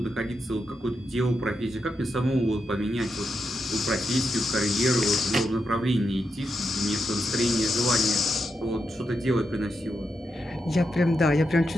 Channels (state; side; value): normal; both; correlation 0.85